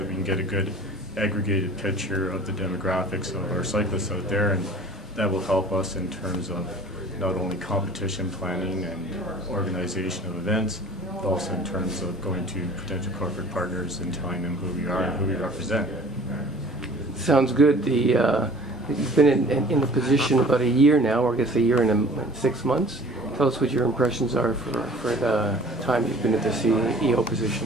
we can get a good aggregated picture of the demographics of our cyclists out there, and that will help us in terms of not only competition planning and organization of events, but also in terms of going to potential corporate partners and telling them who we are and who we represent. Sounds good. You've been in the position about a year now, or I guess a year and 6 months. Tell us what your impressions are for the time you've been at the CEO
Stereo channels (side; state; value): both; normal; correlation 0.47